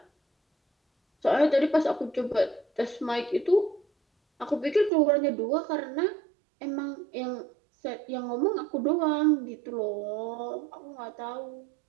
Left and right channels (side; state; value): left; drops out; at 4.9 s